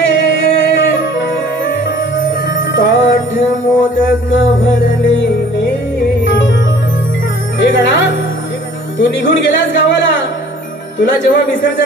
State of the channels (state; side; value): normal; both; correlation 0.52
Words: मोदक भरलेले हे गणा तू निघून गेलास गावाला तुला जेव्हा